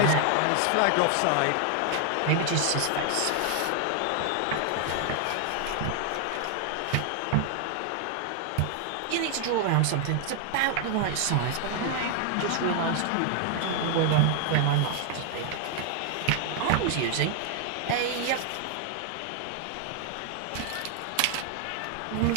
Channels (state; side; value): different; both; correlation 0.00